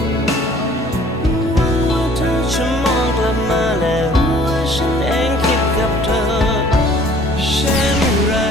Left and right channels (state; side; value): normal; both; correlation 0.54